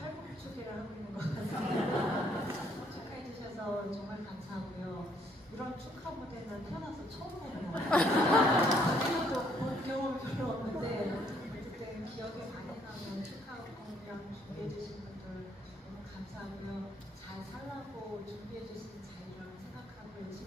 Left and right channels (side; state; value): both; normal; correlation 0.67